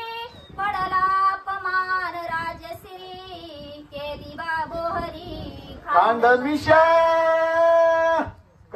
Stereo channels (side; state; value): both; identical; correlation 1.00